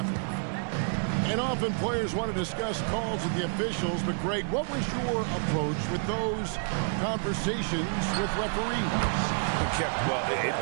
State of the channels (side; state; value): left; silent; 59 dB below the other